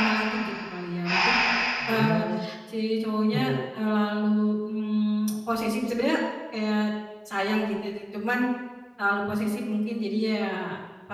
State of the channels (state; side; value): identical; both; correlation 1.00